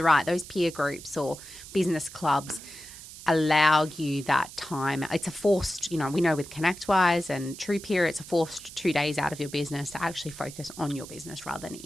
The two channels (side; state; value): right; noise; hiss, 15 dB below the sound